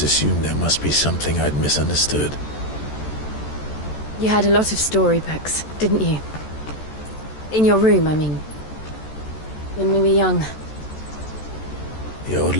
assumed there must be something I'd misunderstood. You had a lot of storybooks, didn't you? In your room, I mean. When we were young. The old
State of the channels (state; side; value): late; right; 14 ms